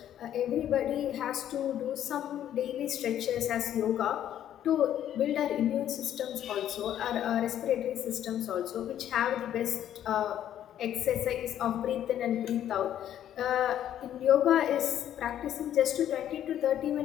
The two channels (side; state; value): right; quieter; 10.9 dB